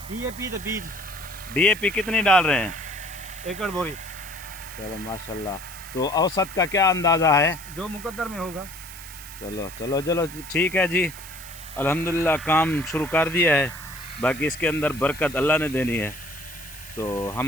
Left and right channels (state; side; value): noise; right; hiss, 15 dB below the sound